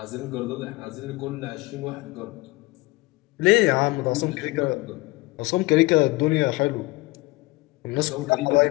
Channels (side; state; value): right; quieter; 22.5 dB